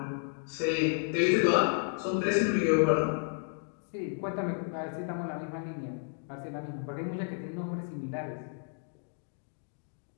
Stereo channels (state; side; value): silent; right; 56 dB below the other